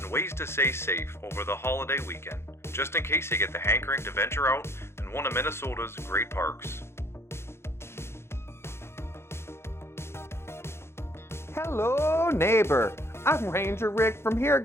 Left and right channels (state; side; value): late; right; 0.12 ms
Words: ways to stay safe over the holiday weekend, just in case you get the hankering to venture out in one of Minnesota's great parks. Hello, neighbor. I'm Ranger Rick from here